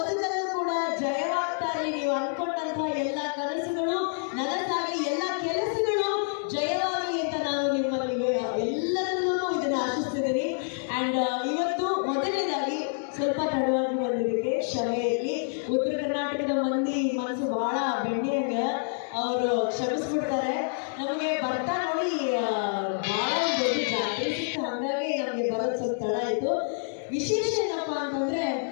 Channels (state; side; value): silent; right; digital silence